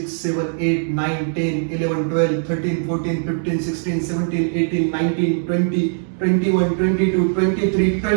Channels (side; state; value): left; silent; digital silence